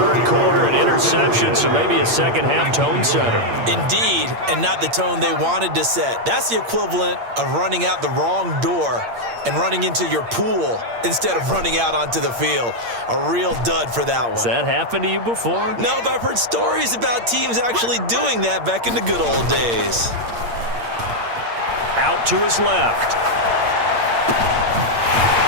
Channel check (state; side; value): late; left; 8.6 ms